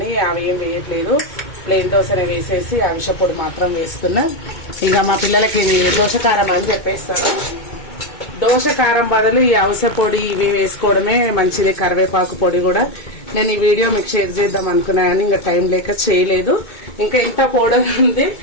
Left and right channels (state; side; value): late; right; 2.2 ms